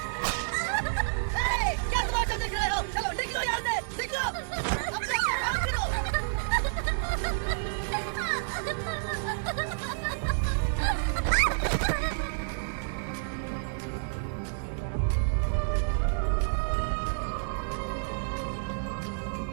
क्या तमाशा देख रहे हो? चलो निकलो यहाँ से, निकलो। अपने काम करो।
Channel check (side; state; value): left; silent; 58 dB below the other